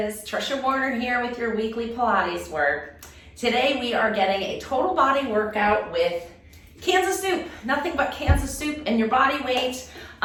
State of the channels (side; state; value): both; identical; correlation 1.00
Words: Trisha Warner here with your weekly Pilates work. Today we are getting a total body workout with cans of soup. Nothing but cans of soup and your body weight.